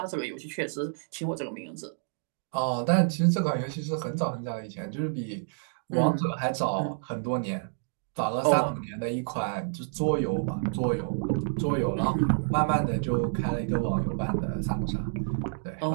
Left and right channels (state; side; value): silent; left; digital silence